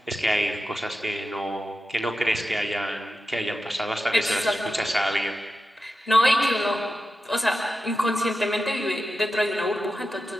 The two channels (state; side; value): normal; both; correlation 0.91